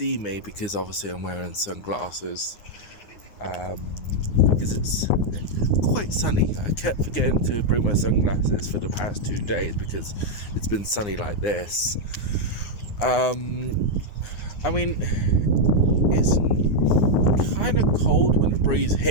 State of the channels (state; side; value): late; right; 9.7 ms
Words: me because obviously I'm wearing sunglasses because it's quite sunny. I kept forgetting to bring my sunglasses for the past 2 days because it's been sunny like this. I mean, it's kind of cold when the breeze